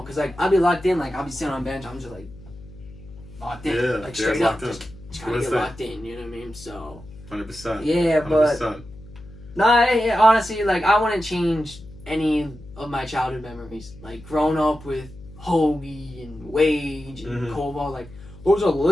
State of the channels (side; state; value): left; noise; hum, 18 dB below the sound